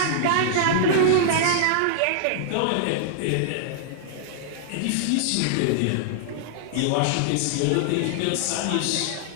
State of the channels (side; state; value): both; different; correlation -0.01